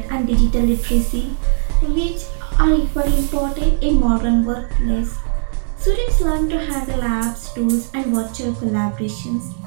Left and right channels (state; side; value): silent; left; digital silence